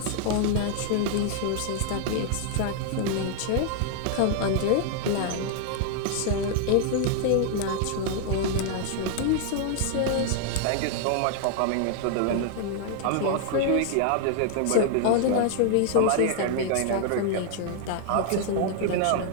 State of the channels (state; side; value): different; both; correlation 0.00